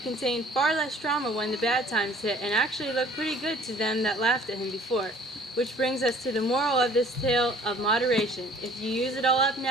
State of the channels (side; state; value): both; normal; correlation 0.53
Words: contained far less drama when the bad times hit, and actually looked pretty good to them that laughed at him before. Which brings us to the moral of this tale of moderation. If you use it all up